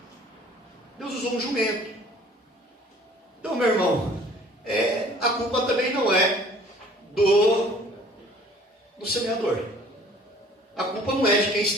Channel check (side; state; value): both; normal; correlation 0.52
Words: Deus usou um jumento. Então, meu irmão, a culpa também não é do semeador. A culpa não é de quem